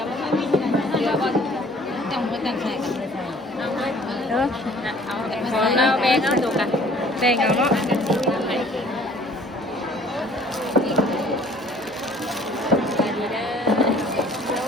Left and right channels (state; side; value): normal; both; correlation 0.54